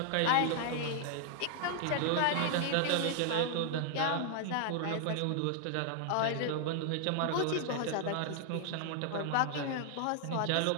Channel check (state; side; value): different; both; correlation 0.00